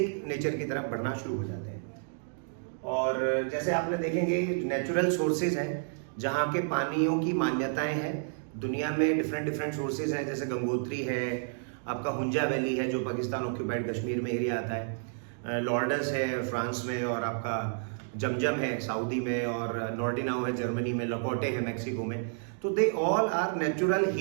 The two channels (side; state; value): left; silent; digital silence